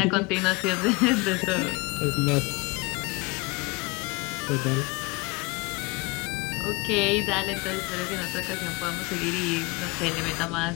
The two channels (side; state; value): right; quieter; 26.1 dB